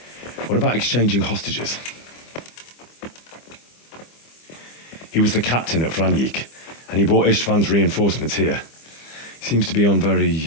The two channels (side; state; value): right; late; 25 ms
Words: What about exchanging hostages? He was the captain at Franjik, and he brought Istvan's reinforcements here. He seems to be on